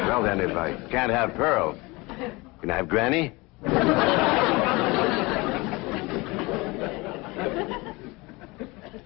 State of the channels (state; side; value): quieter; right; 24.1 dB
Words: then, if I can't have Pearl, can I have Granny?